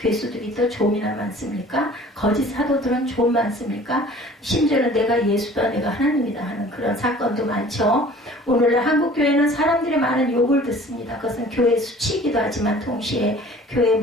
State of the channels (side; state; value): both; normal; correlation 0.48